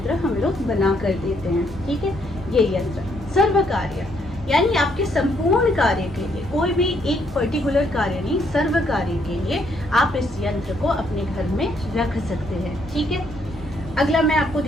हम लोग बना कर देते हैं, ठीक है। ये यंत्र सर्व कार्य यानी आपके संपूर्ण कार्य के लिए, कोई भी एक पर्टिकुलर कार्य नहीं, सर्व कार्य के लिए आप इस यंत्र को अपने घर में रख सकते हैं, ठीक है। अगला मैं आपको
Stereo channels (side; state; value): both; normal; correlation 0.71